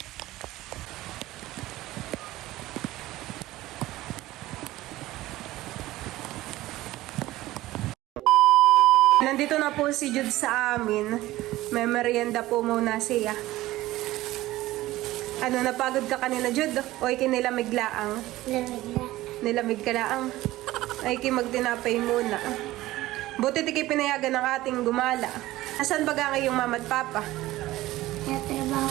Nandito na po si Jude sa amin. May merienda po muna siya. Ano, napagod ka kanina, Jude? O ikinilamig laang? Lamig na. Nilamig ka laang? Ay magtinapay muna. Buti tiki pinayagan ng ating gumala. Asan ba nga yung mama at papa? Natrabaho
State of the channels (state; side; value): quieter; left; 16.8 dB